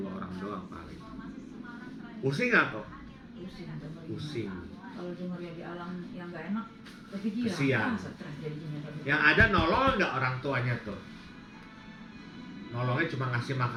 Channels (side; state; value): both; identical; correlation 1.00